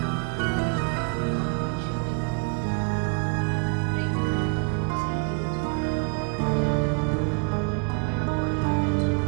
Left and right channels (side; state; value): left; quieter; 36.8 dB